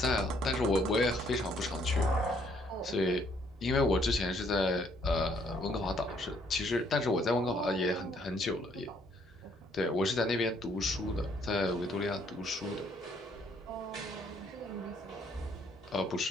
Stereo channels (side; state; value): both; normal; correlation 0.67